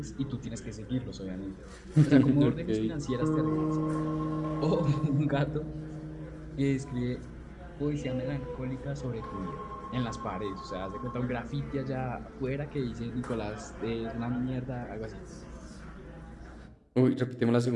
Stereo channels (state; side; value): identical; both; correlation 1.00